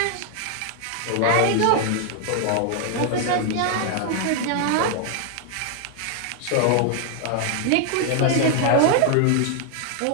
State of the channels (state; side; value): different; both; correlation 0.00